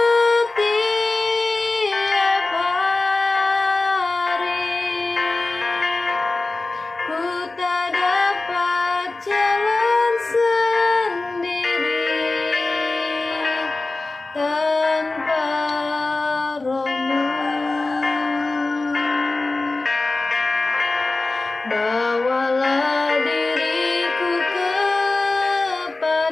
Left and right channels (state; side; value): quieter; right; 3.3 dB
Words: hari. Ku tak dapat jalan sendiri tanpa Roh-Mu. Bawalah diriku